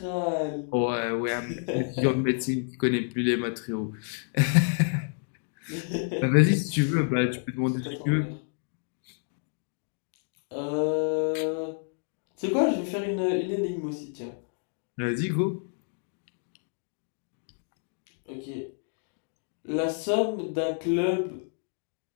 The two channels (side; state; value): right; silent; 58 dB below the other